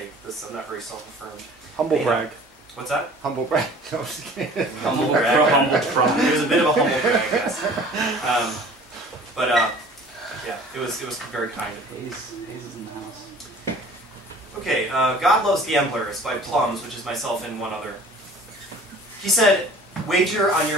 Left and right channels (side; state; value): both; normal; correlation 0.47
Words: this. I'm not very self-affirmed. Humble Yeah. brag. What's that? Humble brag. No, I'm just kidding. Humble brag. It was a bit of a humble brag, yes. Yeah, it was very kind of me. Hayes is in the house. Okay, God Loves Gamblers by Plums, which is myself and one other. He said, Wager on